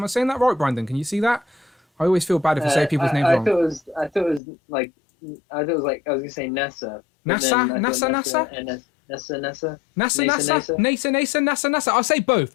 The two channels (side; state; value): right; drops out; at 4.4 s